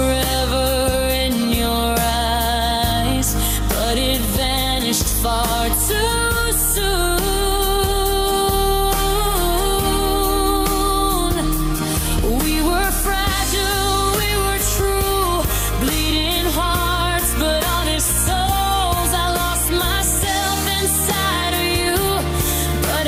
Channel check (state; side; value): identical; both; correlation 1.00